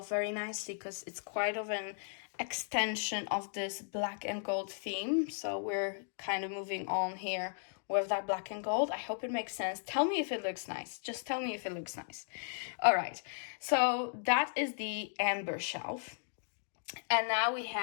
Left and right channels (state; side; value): silent; right; digital silence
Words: very nicely because it's quite of an extension of this black and gold theme. So we're kind of moving on here with that black and gold. I hope it makes sense. Tell me if it looks nice. Just tell me if it looks nice. All right, so that is the amber shelf. And now we